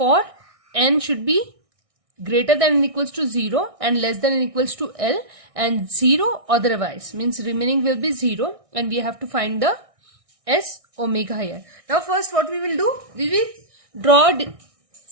n should be greater than or equals to 0 and less than or equals to L, and 0 otherwise, means remaining will be 0, and we have to find the S omega here. Now first what we will do, we will draw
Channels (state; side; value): late; left; 1.6 ms